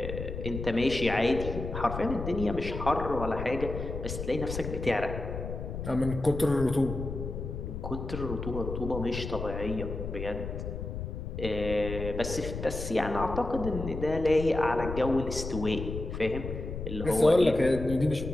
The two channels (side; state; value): left; noise; rumble, 6 dB below the sound